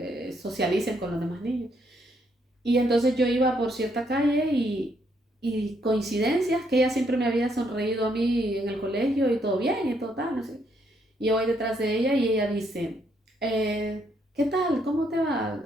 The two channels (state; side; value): normal; both; correlation 0.73